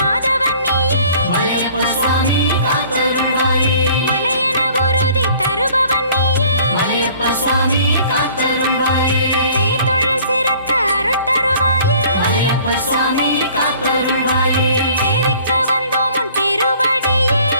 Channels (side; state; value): both; inverted; correlation -0.53